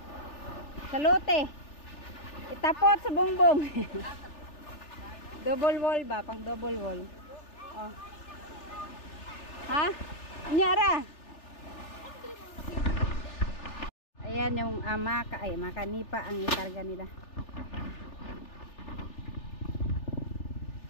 Sa lote. Itapot sa bongbong. Double wall ba? Pang double wall. Oh. Ha? Anyara? Ayan yung makanipa ang ikarga nila.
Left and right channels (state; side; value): late; right; 3.4 ms